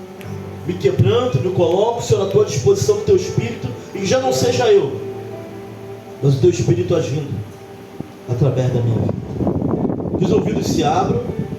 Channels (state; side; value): identical; both; correlation 1.00